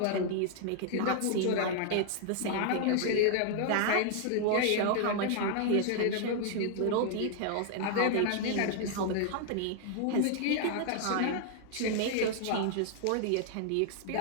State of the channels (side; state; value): both; different; correlation 0.00